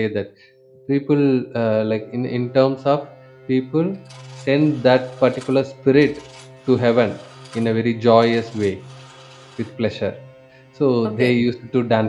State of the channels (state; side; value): identical; both; correlation 1.00